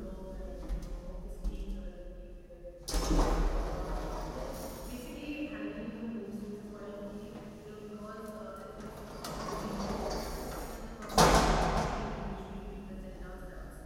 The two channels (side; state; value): both; identical; correlation 1.00